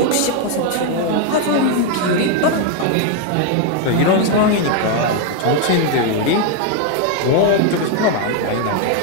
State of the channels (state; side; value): different; both; correlation 0.01